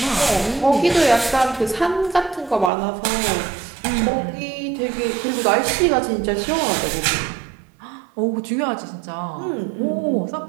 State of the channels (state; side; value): drops out; left; at 2.7 s